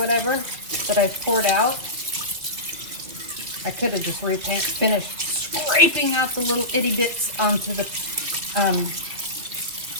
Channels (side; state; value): left; late; 2.7 ms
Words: that I've poured out. I could have just finished scraping out the little itty bits onto the